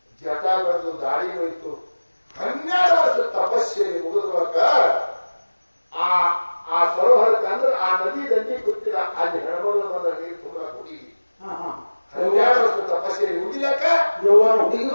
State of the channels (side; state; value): both; inverted; correlation -1.00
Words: ಜಟ ಬೆಳೆದು ದಾಡಿ ಹೋಯಿತು. 12 ವರ್ಷ ತಪಸ್ಸೆಯಲ್ಲಿ ಮುಗಿದ್ರೊಳಗ ಆ ಸರೋವರಕ್ಕೆ ಅಂದ್ರೆ ಆ ನದಿ ದಂಡಿ ಕೂತಿಲ್ಲ. ಅಲ್ಲಿ ಹೆಣ್ಮಗಳು ಬಂದ ನೀರು ತುಂಬ ಹುಡುಗಿ 12 ವರ್ಷ ತಪಸ್ಸೆಯಲ್ಲಿ ಮುಗಿಲಕ್ಕ ಯೌವನ ಹುಡುಗಿ